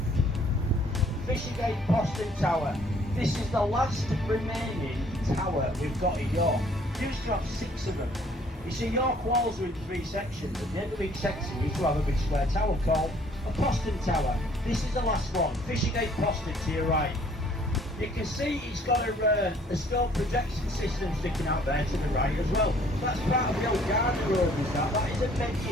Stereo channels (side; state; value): both; normal; correlation 0.59